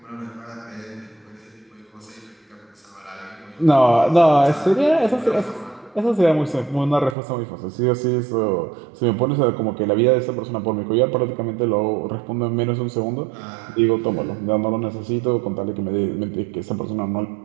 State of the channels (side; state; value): left; drops out; at 7.2 s